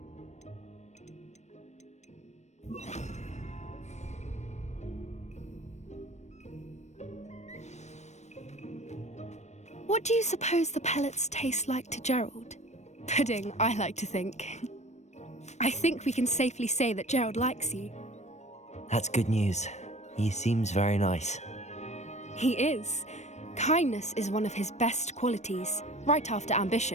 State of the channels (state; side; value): late; right; 0.33 ms